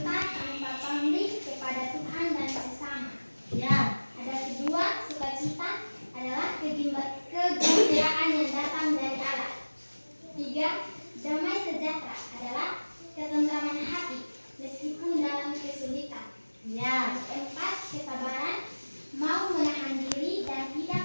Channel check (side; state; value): both; inverted; correlation -1.00